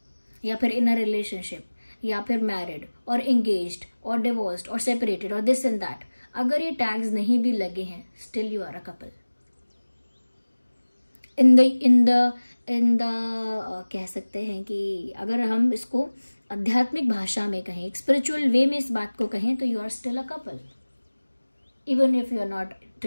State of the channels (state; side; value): inverted; both; correlation -1.00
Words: या फिर इन अ रिलेशनशिप या फिर मैरिड और एंगेज्ड और डिवोर्स्ड और सेपरेटेड और दिस एंड दैट, अगर ये टैग्स नहीं भी लगे हैं, still you are a couple. In the कह सकते हैं कि अगर हम इसको आध्यात्मिक भाषा में कहें, एक स्पिरिचुअल वे में इस बात को कहें, तो you are still a couple. Even if you are not